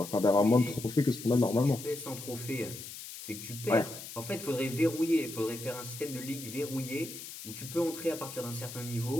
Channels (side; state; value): left; noise; hiss, 11 dB below the sound